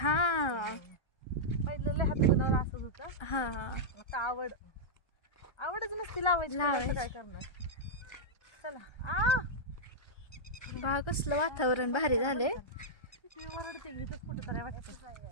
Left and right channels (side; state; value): right; late; 1.3 ms